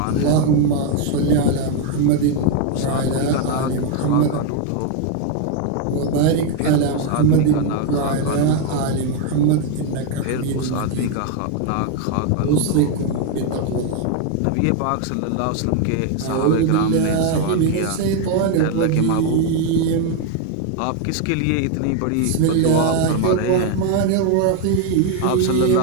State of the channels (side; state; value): both; different; correlation 0.01